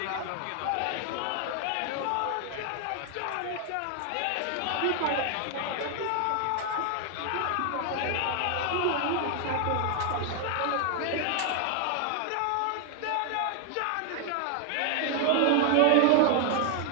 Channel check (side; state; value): both; different; correlation 0.00